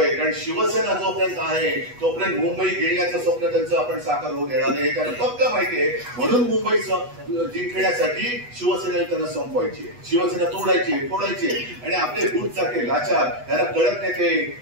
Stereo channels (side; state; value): left; late; 8.2 ms